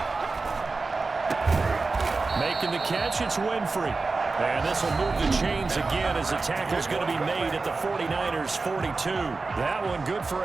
Making the catch, it's Winfrey. And this will move the chains again as the tackle's going to be made at the 49ers' 42. That one good for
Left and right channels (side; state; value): left; quieter; 3.9 dB